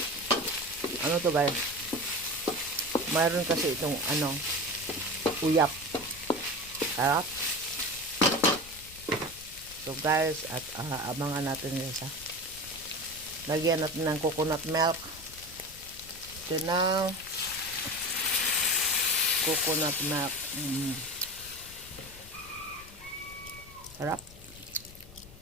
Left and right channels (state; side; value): noise; left; rumble, 19 dB below the sound